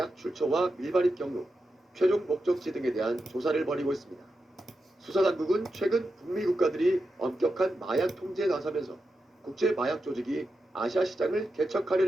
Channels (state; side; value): normal; both; correlation 0.89